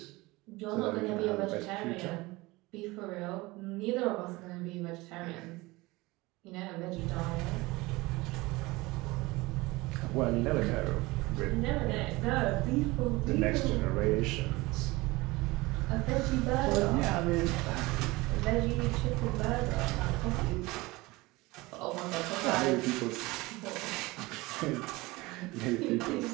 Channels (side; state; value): left; quieter; 21.8 dB